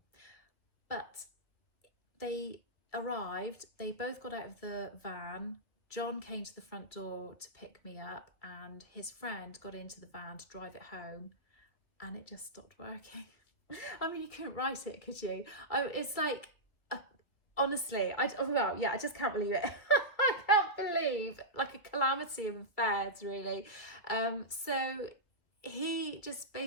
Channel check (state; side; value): late; right; 2.3 ms